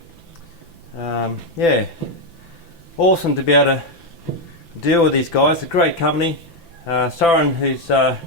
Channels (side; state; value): right; late; 5.9 ms